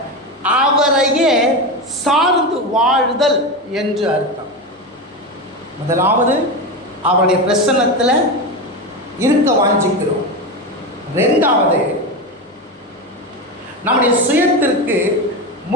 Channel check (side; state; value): both; normal; correlation 0.18